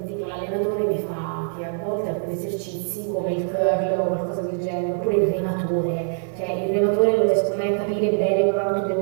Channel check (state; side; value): silent; left; digital silence